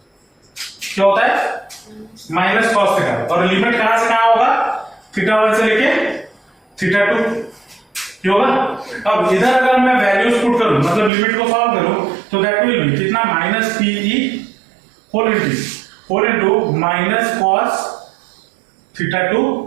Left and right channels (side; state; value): left; drops out; at 11.1 s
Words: क्या होता है माइनस कॉस थीटा, और लिमिट कहां से कहां होगा थीटा 1 से लेके थीटा 2 क्या होगा। अब इधर अगर मैं वैल्यूज पुट करूं मतलब लिमिट को सॉल्व करूं तो दैट विल बी कितना minus PE whole into minus cos theta 2